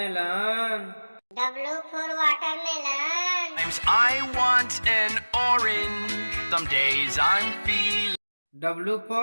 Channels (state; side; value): inverted; both; correlation -1.00